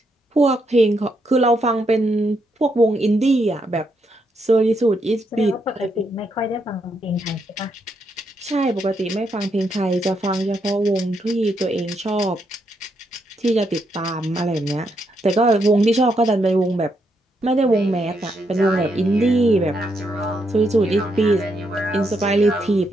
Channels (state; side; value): normal; both; correlation 0.78